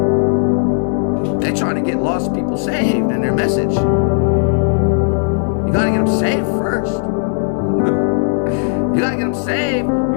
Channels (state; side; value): silent; right; digital silence